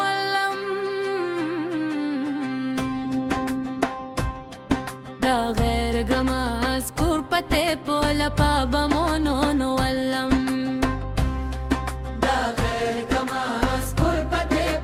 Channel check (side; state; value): both; identical; correlation 1.00